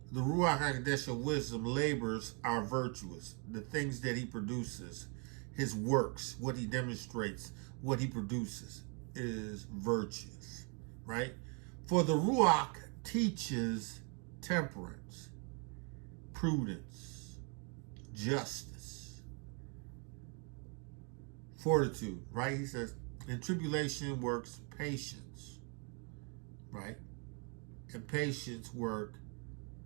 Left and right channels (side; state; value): left; quieter; 35.1 dB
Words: the Ruach HaKodesh of wisdom labors are virtuous. The things that he produces, his works, what he demonstrates, what he produces is virtuous. Right? For the Ruach teaches temperance, prudence, justice, fortitude, right? He says, in tribulation works patience, right? And patience work